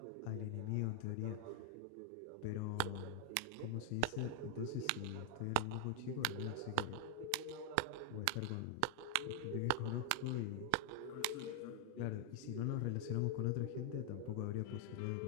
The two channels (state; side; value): different; both; correlation 0.00